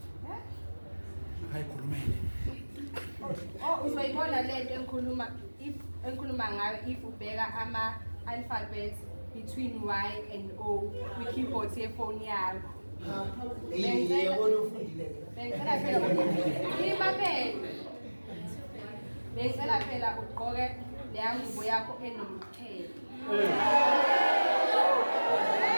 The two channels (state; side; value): inverted; both; correlation -1.00